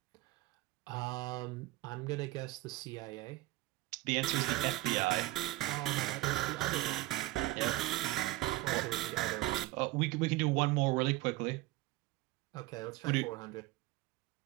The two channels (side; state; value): left; quieter; 18.3 dB